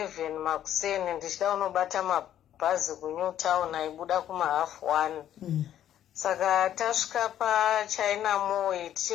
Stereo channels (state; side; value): quieter; right; 11.1 dB